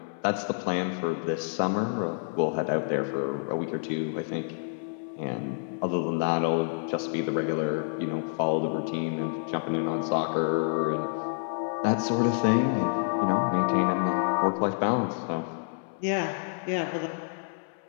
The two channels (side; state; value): right; silent; 59 dB below the other